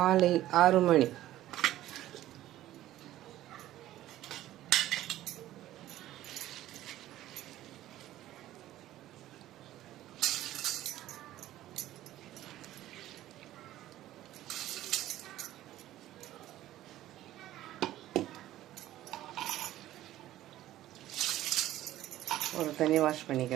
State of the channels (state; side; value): quieter; left; 14.2 dB